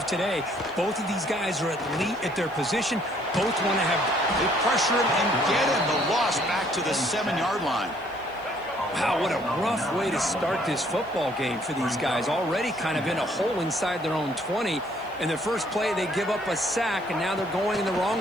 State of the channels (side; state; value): left; noise; hiss, 29 dB below the sound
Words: today. Both of these guys are elite at their position. Both want to have... They pressure him and get him. The loss back to the 7-yard line. Wow, what a rough way to start this football game for these guys. Already kind of in a hole inside their own 20. In their first play, they give up a sack, and now they're going in the